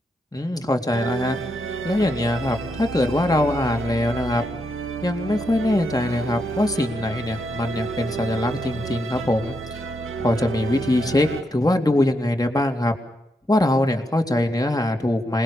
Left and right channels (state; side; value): normal; both; correlation 0.81